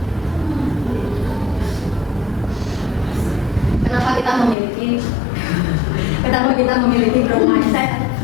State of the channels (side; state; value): right; drops out; at 4.5 s